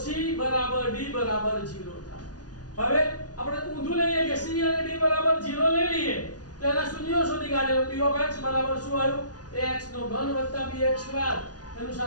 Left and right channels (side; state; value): right; late; 0.69 ms